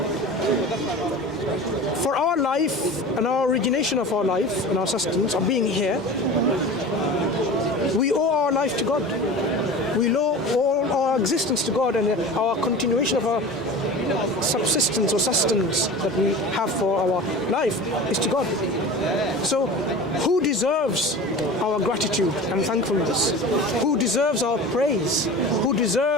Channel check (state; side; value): normal; both; correlation 0.35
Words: For our life and our origination of our life and our sustenance of being here, we owe our life to God. We owe all our existence to God and our continuation of our subsistence or sustenance that we have for our life is to God. So who deserves our gratitude and thankfulness? Who deserves our praise? Who